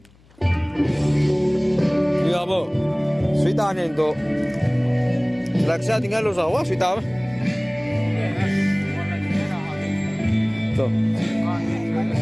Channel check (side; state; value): left; noise; hum, 29 dB below the sound